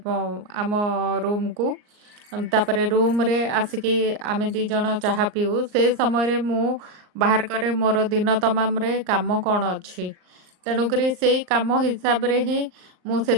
आम रूम को। तापरे रूम रे आसिकी आमे दी जण चाहा पीऊ। से समय रे मु बाहर करे मोर दिन तमाम रे काम कौन अच्छी। तेणुकरी से काम हिसाब रे ही मु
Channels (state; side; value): late; left; 39 ms